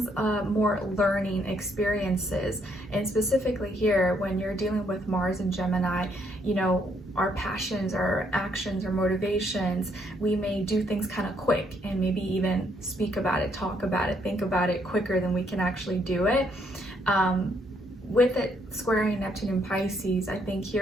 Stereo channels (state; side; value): normal; both; correlation 0.71